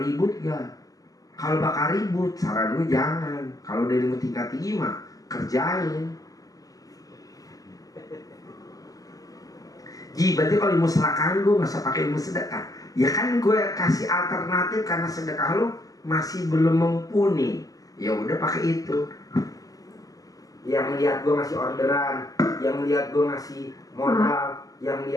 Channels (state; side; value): late; right; 0.17 ms